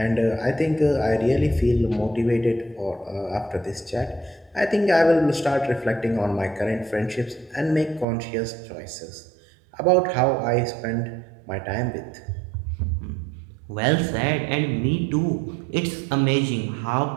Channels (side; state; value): left; drops out; at 8.1 s